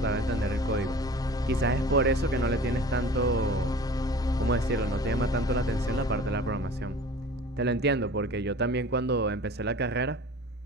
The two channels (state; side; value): normal; both; correlation 0.42